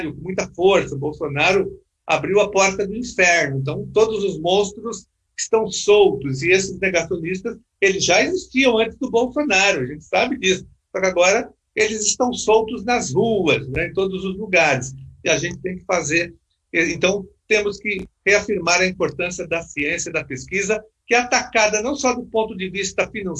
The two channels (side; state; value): both; identical; correlation 1.00